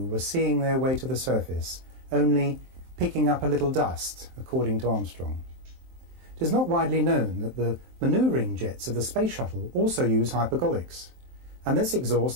were seeing their way to the surface, only picking up a little dust, according to Armstrong. It is not widely known that the manoeuvring jets of the space shuttle also use hypergolics, and this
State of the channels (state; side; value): late; left; 23 ms